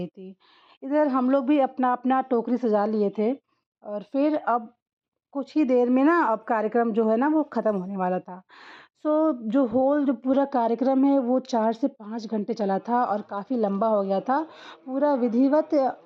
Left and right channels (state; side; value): identical; both; correlation 1.00